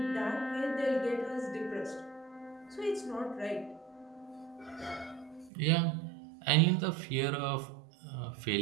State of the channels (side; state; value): left; drops out; at 5.5 s